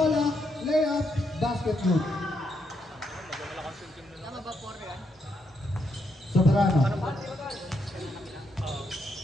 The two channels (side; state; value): both; normal; correlation 0.78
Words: Layup, basket good. Tama ba 4 yan? Soberano.